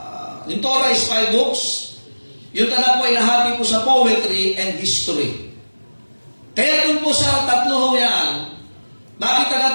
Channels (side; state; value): both; inverted; correlation -1.00